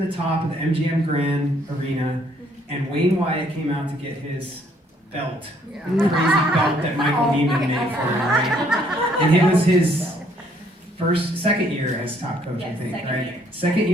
the top of the MGM Grand Arena, and Wayne Wyatt came out to get his belt, the crazy belt that Michael Neiman made for him, right? And it was his second year as top coach, yes, I think, second right? year. Second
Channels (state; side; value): normal; both; correlation 0.65